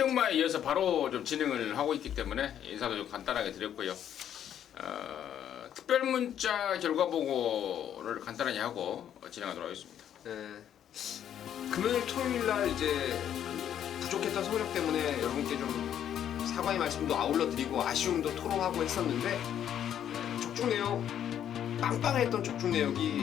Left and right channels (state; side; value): quieter; right; 10.0 dB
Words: 이어서 바로 좀 진행을 하고 있기 때문에 인사도 좀 간단하게 드렸고요. 특별 문자 결과 보고를 간단하게 하고 진행하도록 하겠습니다. 금요일 토요일 날 이제 부족했던 성적 때문에 여러분께 좀 사과의 말씀도 아울러 드리고 아쉬움도 토로하고 했었는데 적중 내역 빵빵했던 적중